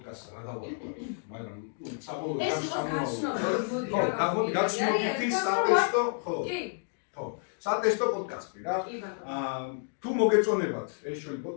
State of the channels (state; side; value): silent; right; digital silence